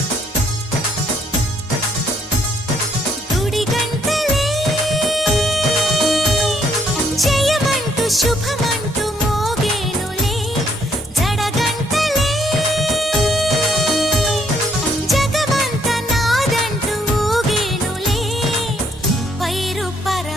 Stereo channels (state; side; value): normal; both; correlation 0.69